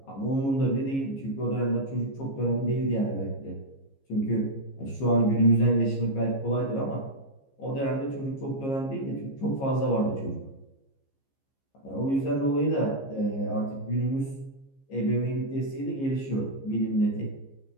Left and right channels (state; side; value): late; right; 15 ms